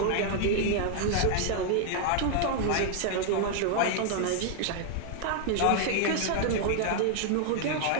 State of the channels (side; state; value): both; different; correlation 0.00